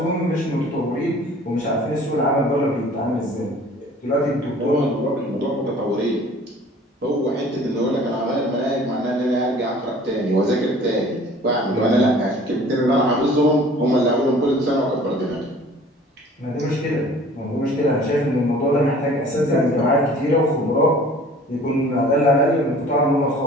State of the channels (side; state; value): both; normal; correlation 0.49